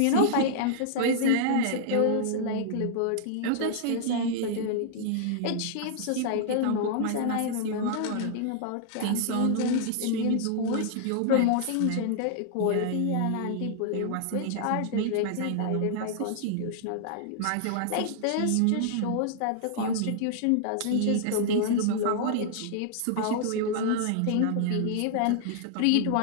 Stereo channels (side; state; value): both; different; correlation -0.01